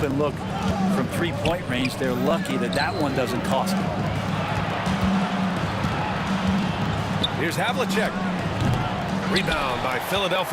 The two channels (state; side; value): identical; both; correlation 1.00